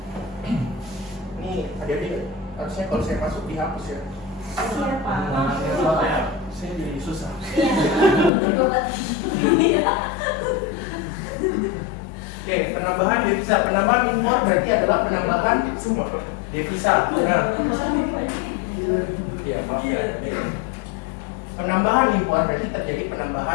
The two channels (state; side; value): drops out; right; at 8.3 s